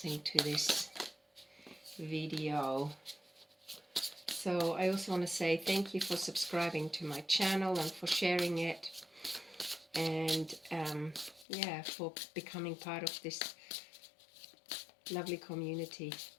to this video. So I also want to say thank you for subscribing to my channel and for sharing it, and yeah, for becoming part of this lovely community.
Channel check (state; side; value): drops out; right; at 11.5 s